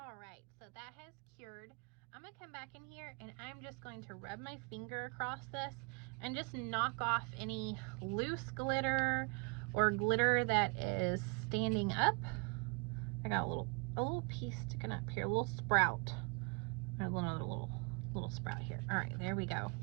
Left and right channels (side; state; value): left; quieter; 32.1 dB